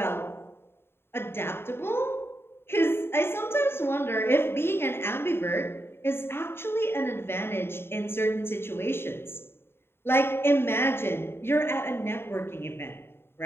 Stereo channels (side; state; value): right; late; 0.11 ms